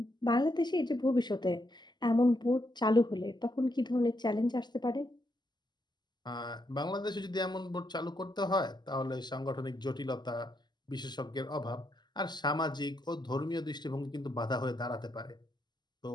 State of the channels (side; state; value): right; late; 0.21 ms